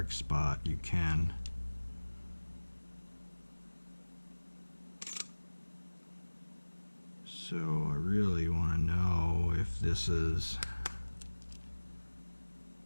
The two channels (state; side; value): inverted; both; correlation -1.00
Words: spot, you can. So I really want to know if this is